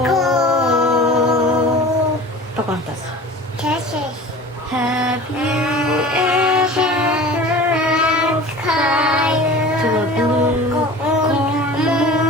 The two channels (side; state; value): both; normal; correlation 0.39